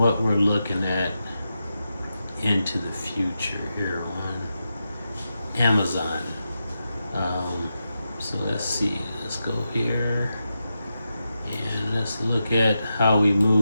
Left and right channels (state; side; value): inverted; both; correlation -0.88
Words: we're looking at into the future here on Amazon. So let's see, let's go here and let's look at how we